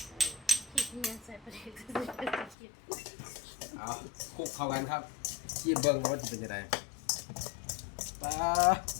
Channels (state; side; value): drops out; right; at 2.6 s